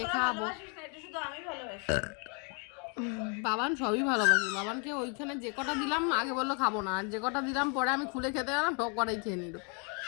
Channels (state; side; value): quieter; right; 37.0 dB